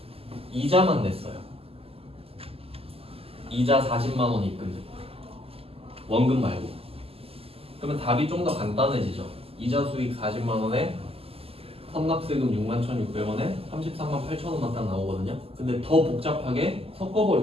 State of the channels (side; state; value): left; late; 0.28 ms